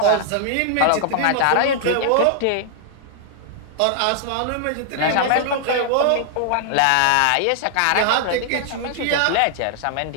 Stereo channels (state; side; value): different; both; correlation -0.01